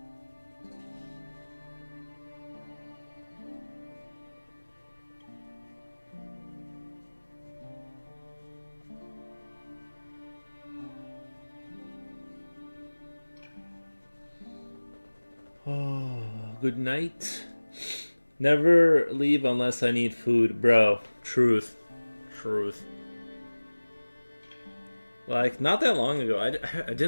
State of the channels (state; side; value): inverted; both; correlation -1.00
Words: Oh, good night. Never leave unless I need food, bro. Truth. Like, not that long ago, I